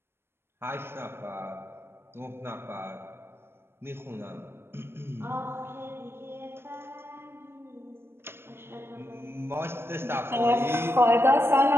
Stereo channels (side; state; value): left; late; 0.12 ms